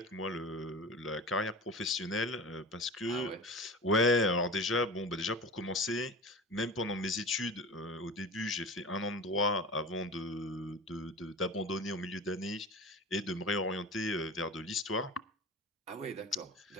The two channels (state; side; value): normal; both; correlation 0.34